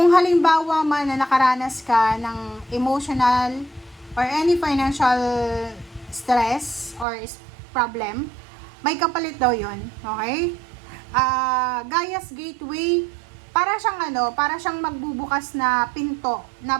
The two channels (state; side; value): drops out; left; at 7.1 s